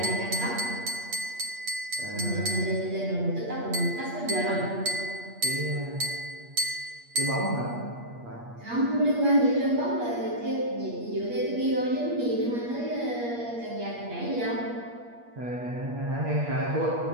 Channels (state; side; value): late; left; 8.5 ms